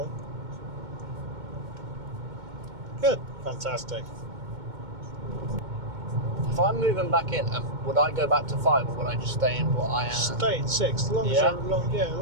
Good. Fantastic. If I'm moving back in, would I go back to 5 or would I just stay in what I am? Stay in 6, as long as Yeah? as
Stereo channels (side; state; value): left; late; 2.2 ms